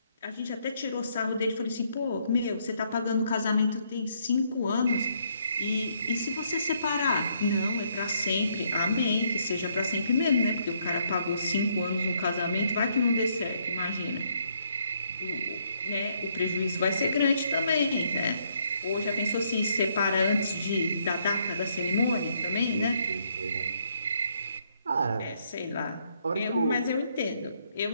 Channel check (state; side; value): inverted; both; correlation -0.71